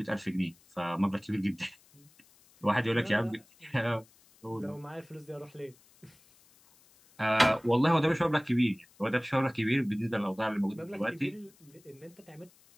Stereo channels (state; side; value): noise; left; hiss, 29 dB below the sound